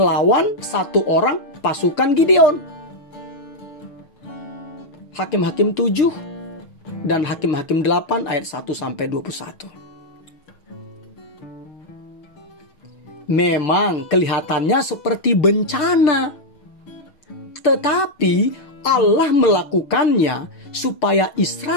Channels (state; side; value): late; right; 6.3 ms